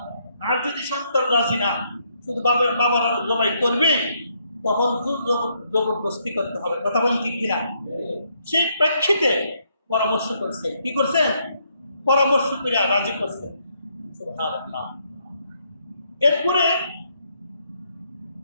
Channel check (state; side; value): inverted; both; correlation -0.73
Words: আর যদি সন্তান রাজি না, শুধু বাবার জবাই করবে, তখন জবরদস্তি করতে হবে। কথা বলুন ঠিক কিনা? সেই প্রেক্ষিতে পরামর্শ করছে। কি করছে? পরামর্শ করে রাজি করছে। সুবহানাল্লাহ। এরপরে